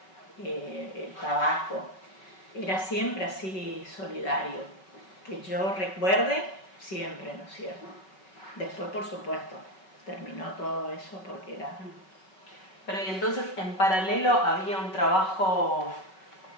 el tabaco. Era siempre así solidario, que yo recuerde siempre, ¿no es cierto? Después, por supuesto, terminó todo eso porque era... Pero y entonces, en paralelo, había un trabajo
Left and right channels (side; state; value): right; late; 5.3 ms